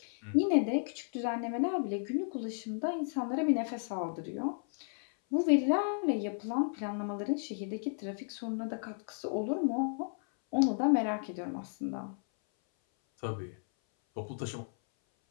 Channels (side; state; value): right; silent; 55 dB below the other